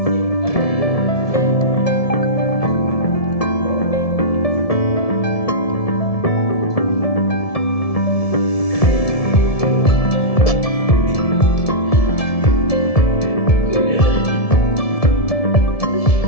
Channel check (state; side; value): late; right; 1.7 ms